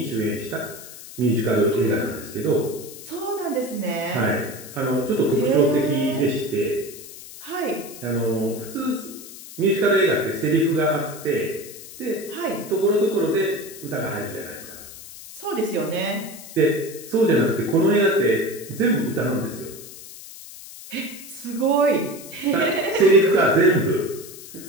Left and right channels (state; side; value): noise; left; hiss, 15 dB below the sound